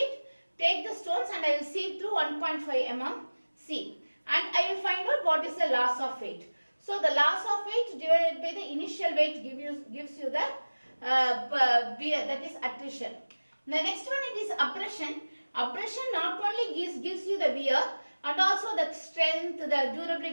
the stones and I will sieve through 1.5 mm sieve. And I will find out what is the loss of weight. So the loss of weight divided by the initial weight gives you the wear, that is attrition. The next one it is abrasion. Abrasion not only gives you the wear, and also the strength, the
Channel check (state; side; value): inverted; both; correlation -1.00